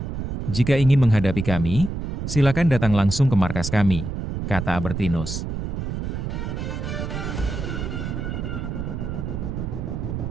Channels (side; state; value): right; noise; rumble, 4 dB below the sound